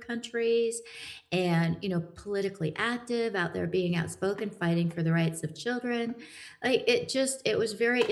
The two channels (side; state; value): both; identical; correlation 1.00